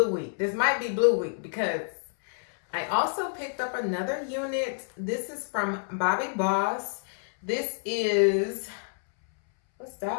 Week. This might be Blue Week because I also picked up another unit. This is from Bobbi Boss. This is, what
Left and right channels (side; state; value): right; silent; 59 dB below the other